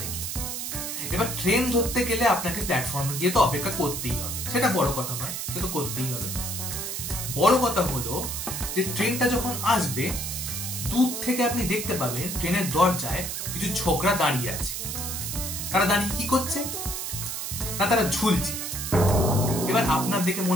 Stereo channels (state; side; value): noise; right; hiss, 4 dB below the sound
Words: থেকে। এবার ট্রেন ধরতে গেলে আপনাকে প্ল্যাটফর্মে গিয়ে তো অপেক্ষা করতেই হবে, সেটা বড় কথা নয়, সে তো করতেই হবে। বড় কথা হলো যে ট্রেনটা যখন আসবে, দূর থেকে আপনি দেখতে পাবেন ট্রেনের দরজায় কিছু ছোকরা দাঁড়িয়ে আছে। তারা দাঁড়িয়ে কি করছে? না, তারা ঝুলছে। এবার আপনার দেখে